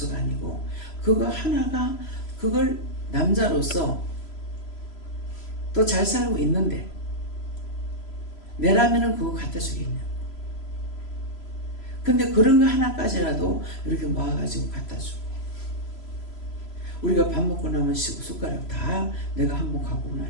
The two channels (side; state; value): right; late; 3.0 ms